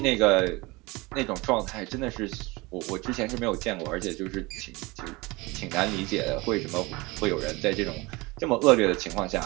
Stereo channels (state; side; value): quieter; left; 23.6 dB